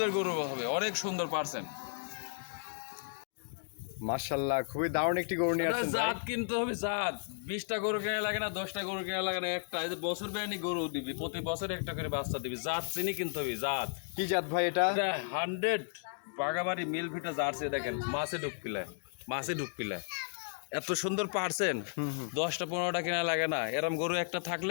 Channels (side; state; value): right; silent; digital silence